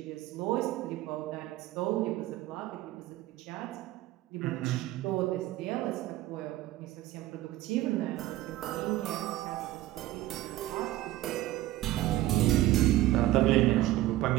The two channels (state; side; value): quieter; left; 15.6 dB